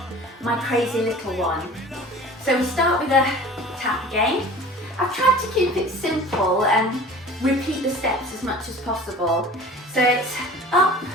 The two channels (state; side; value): normal; both; correlation 0.43